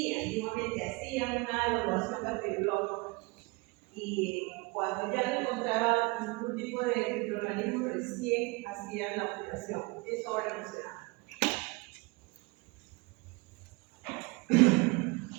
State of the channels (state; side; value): quieter; left; 26.1 dB